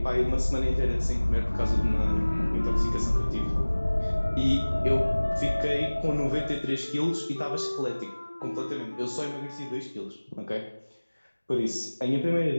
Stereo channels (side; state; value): both; inverted; correlation -1.00